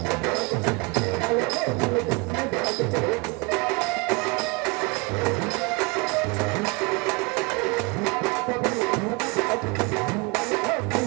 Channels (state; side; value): quieter; left; 27.8 dB